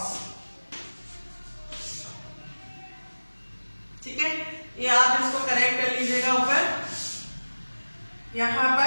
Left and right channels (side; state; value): both; inverted; correlation -1.00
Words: ठीक है, ये आप इसको करेक्ट कर लीजिएगा ऊपर। यहां